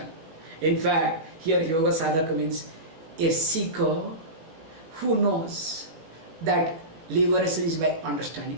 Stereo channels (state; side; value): late; left; 18 ms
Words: In fact, here yoga sadhaka means a seeker who knows that liberation is by